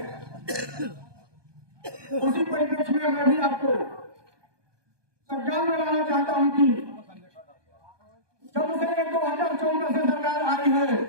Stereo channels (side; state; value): left; late; 1.2 ms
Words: उसी परिप्रेक्ष्य में मैं भी आपको संज्ञान में लाना चाहता हूं कि जब से 2014 से सरकार आई है,